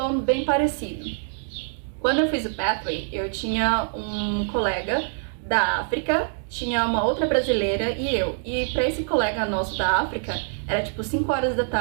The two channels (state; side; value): silent; left; digital silence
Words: bem parecido. Quando eu fiz o Pathway, eu tinha um colega da África, tinha uma outra brasileira e eu. E para esse colega nosso da África, era tipo 5 horas da